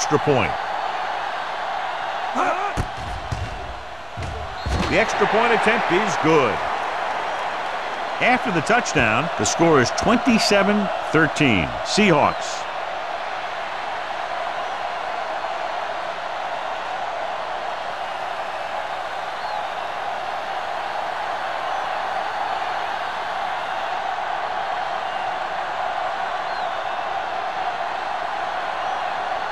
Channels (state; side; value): identical; both; correlation 1.00